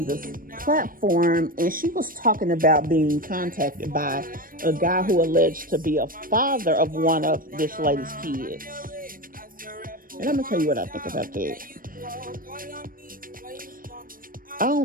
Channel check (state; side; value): late; left; 0.41 ms